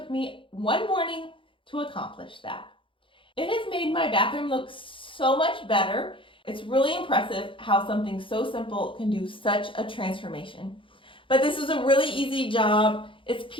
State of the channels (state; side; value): late; right; 0.25 ms